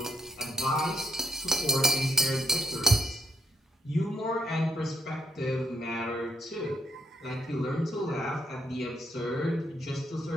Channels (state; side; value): normal; both; correlation 0.74